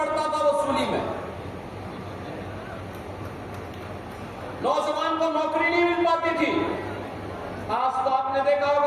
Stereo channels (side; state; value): both; identical; correlation 1.00